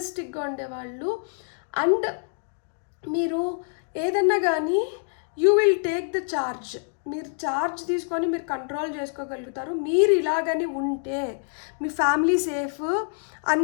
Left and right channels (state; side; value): silent; right; digital silence